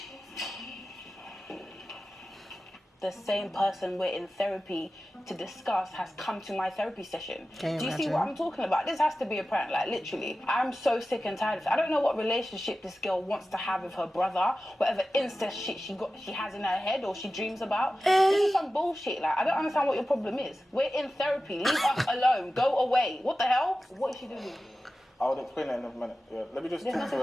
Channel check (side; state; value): both; normal; correlation 0.94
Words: The same person we're in therapy to discuss has come to my therapy session. Do you see what I'm talking about? This has to be a prank, like literally. I'm so sick and tired of it. I don't know what relationship this girl wants to have with her brother, whatever incest shit she has in her head or she dreams about. This is some bullshit. Like, I don't understand what your problem is. We're in therapy. Leave us alone. Go away. What the hell? What is she doing? I'll explain that in a minute. Yeah, let me just. There's nothing